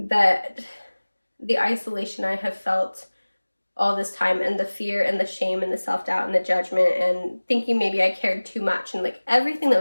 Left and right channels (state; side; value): inverted; both; correlation -1.00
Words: that the isolation I have felt all this time, and the fear and the shame and the self-doubt and the judgment and thinking maybe I cared too much, and like everything that